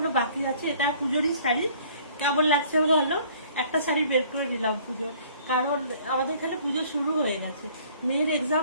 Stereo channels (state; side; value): inverted; both; correlation -0.55